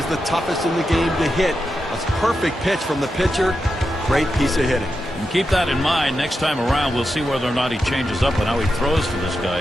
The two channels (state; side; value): normal; both; correlation 0.88